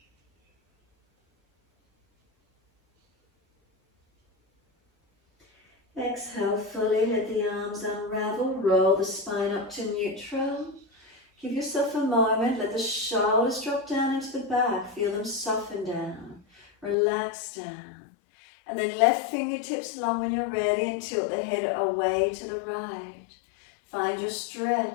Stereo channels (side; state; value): right; drops out; at 16.9 s